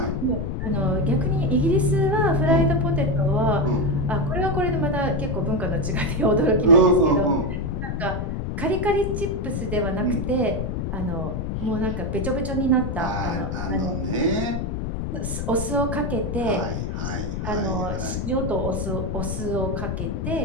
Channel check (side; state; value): left; noise; rumble, 3 dB below the sound